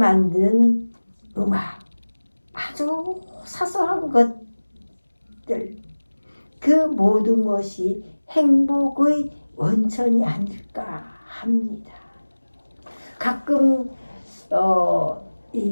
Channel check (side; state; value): both; inverted; correlation -1.00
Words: 음악, 아주 사소한 것들, 그 모든 것이 행복의 원천이 아닐까 합니다. 가끔